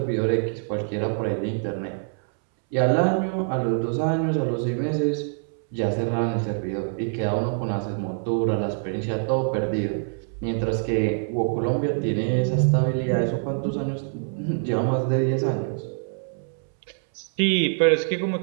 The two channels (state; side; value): silent; left; 62 dB below the other